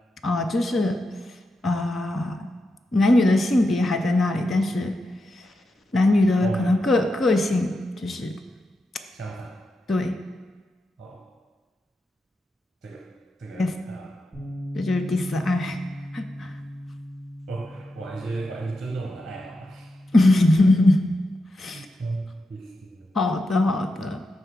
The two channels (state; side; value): normal; both; correlation 0.87